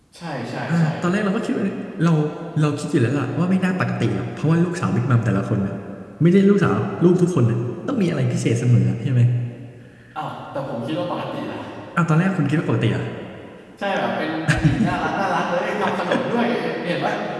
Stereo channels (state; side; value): identical; both; correlation 1.00